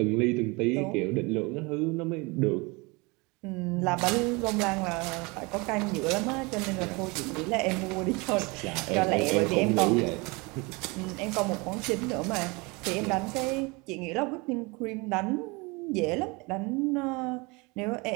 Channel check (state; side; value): quieter; left; 26.7 dB